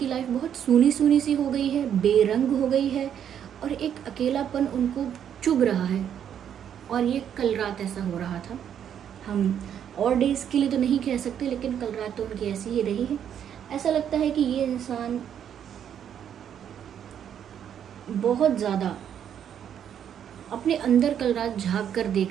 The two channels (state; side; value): quieter; left; 9.1 dB